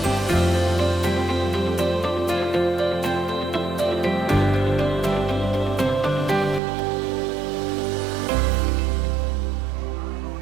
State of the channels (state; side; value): drops out; left; at 6.6 s